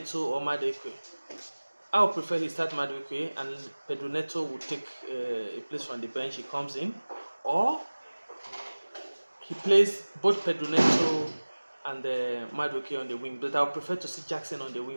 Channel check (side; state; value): both; inverted; correlation -1.00